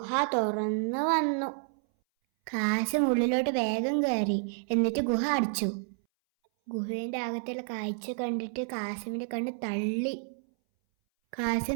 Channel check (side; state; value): left; silent; 58 dB below the other